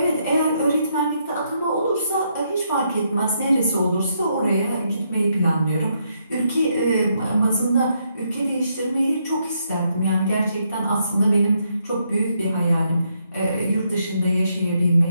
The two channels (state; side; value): inverted; both; correlation -0.77